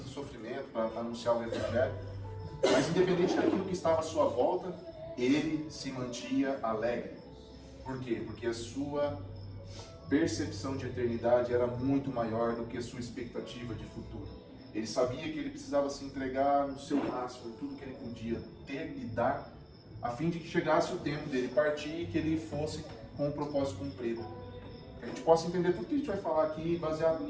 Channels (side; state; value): both; identical; correlation 1.00